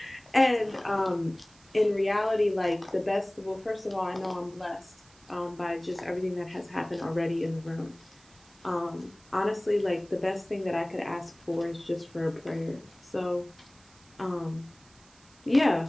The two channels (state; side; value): noise; right; hiss, 27 dB below the sound